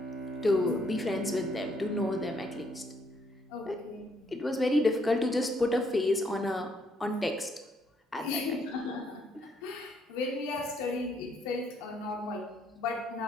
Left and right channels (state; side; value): normal; both; correlation 0.71